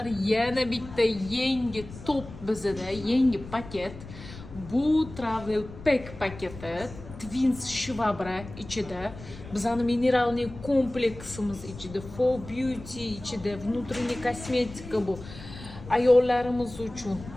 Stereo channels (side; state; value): left; noise; rumble, 15 dB below the sound